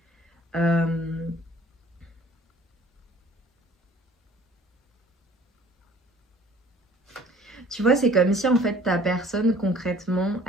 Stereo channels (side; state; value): both; normal; correlation 0.52